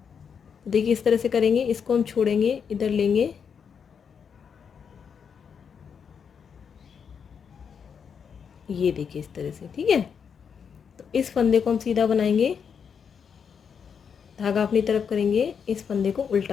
देखिए इस तरह से करेंगे, इसको हम छोड़ेंगे, इधर लेंगे, ये देखिए इस तरह से, ठीक है। तो इस फंदे को हम सीधा बनाएंगे, धागा अपनी तरफ करेंगे, इस फंदे को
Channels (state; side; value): quieter; right; 6.8 dB